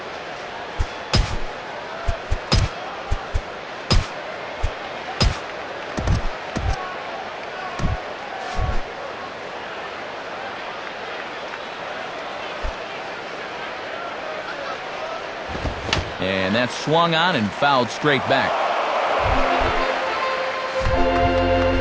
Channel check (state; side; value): identical; both; correlation 1.00